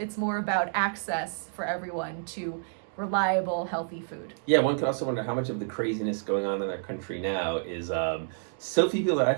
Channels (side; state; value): left; silent; digital silence